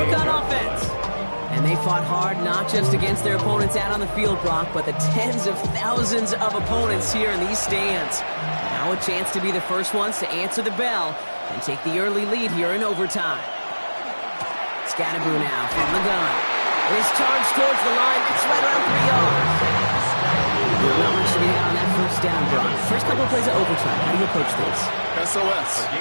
on offense. And they fought hard not just against their opponents out on the field, Brock, but the tens of thousands of opponents here in these stands. Now a chance to be the first ones to answer the bell and take the early lead here in overtime. Scannaboo now from the gun. It is charged towards the line. It's right around 3 yards. Not much to get on that first down, Brock. First couple of plays of overtime. How do you approach this? SOS.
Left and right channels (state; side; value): inverted; both; correlation -1.00